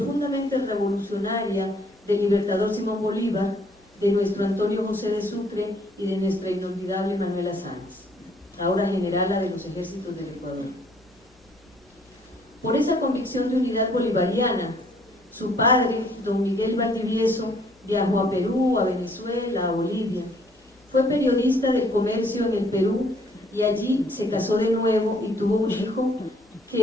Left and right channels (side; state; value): both; normal; correlation 0.63